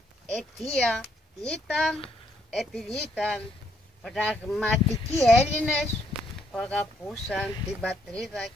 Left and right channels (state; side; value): normal; both; correlation 0.71